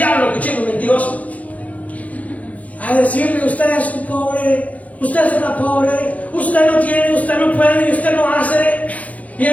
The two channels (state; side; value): late; right; 0.071 ms